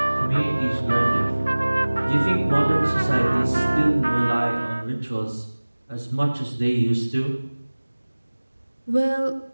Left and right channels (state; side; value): inverted; both; correlation -1.00